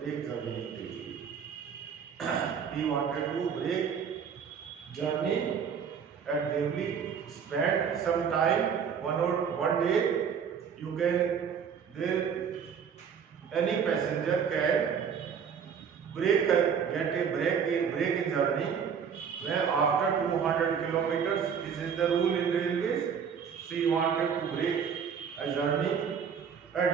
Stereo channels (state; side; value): quieter; left; 7.1 dB